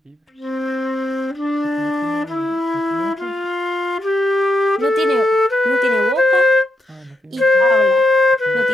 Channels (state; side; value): normal; both; correlation 0.83